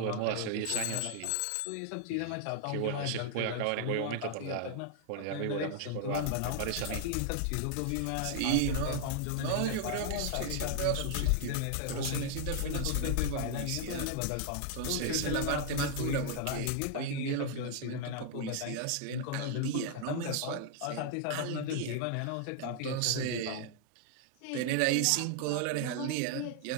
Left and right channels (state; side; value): different; both; correlation 0.00